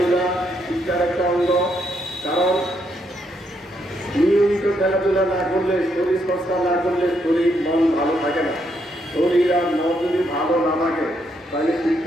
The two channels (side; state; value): both; normal; correlation 0.76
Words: শিক্ষার একটা অঙ্গ, কারণ নিয়মিত খেলাধুলা না করলে, শরীর চর্চা না করলে শরীর মন ভালো থাকে না। শরীর আর মন যদি ভালো না থাকে তাহলে